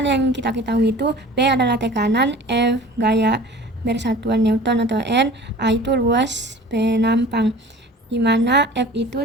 yang kita ketahui itu P adalah tekanan, F gaya bersatuan Newton atau N, A itu luas penampang. Dimana F itu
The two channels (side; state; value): both; normal; correlation 0.43